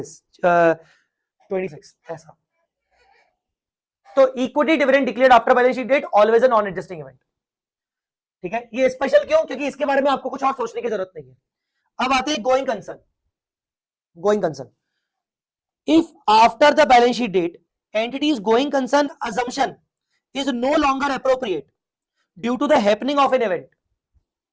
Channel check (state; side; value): identical; both; correlation 1.00